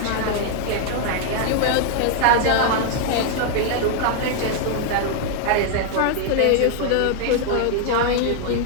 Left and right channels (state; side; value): different; both; correlation 0.00